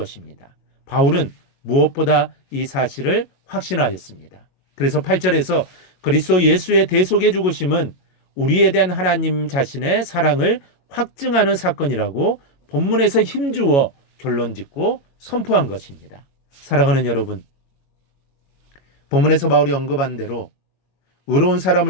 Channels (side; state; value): right; late; 22 ms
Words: 바울은 무엇보다 이 사실을 확신하였습니다. 그래서 8절에서 그리스도 예수의 대속의 죽으심은 우리에 대한 하나님 자신의 사랑을 확증하는 사건이라고 본문에서 힘주어 결론짓고 선포한 것입니다. 사랑하는 여러분, 본문에서 바울이 언급한 대로 의로운